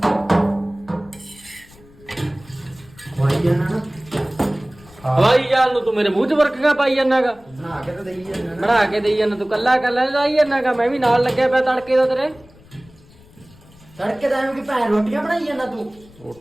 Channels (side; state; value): left; noise; rumble, 25 dB below the sound